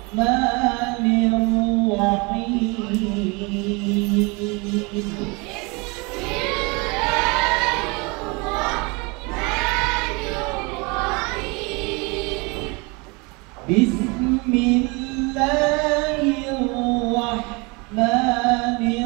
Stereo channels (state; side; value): quieter; left; 28.3 dB